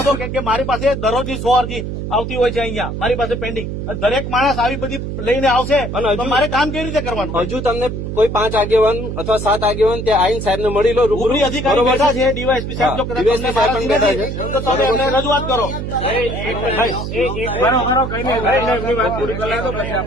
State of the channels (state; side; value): noise; right; hum, 5 dB below the sound